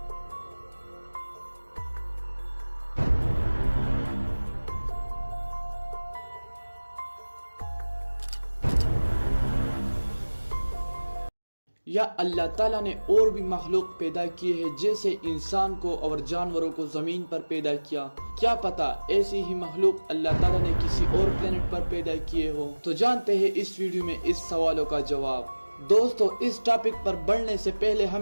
या अल्लाह ताला ने और भी मखलूक पैदा किए हैं, जैसे इंसान को और जानवरों को जमीन पर पैदा किया। क्या पता ऐसी ही मखलूक अल्लाह ताला ने किसी और प्लेनेट पर पैदा किए हो। तो जानते हैं इस वीडियो में इस सवालों का जवाब। दोस्तों इस टॉपिक पर बढ़ने से पहले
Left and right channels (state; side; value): inverted; both; correlation -1.00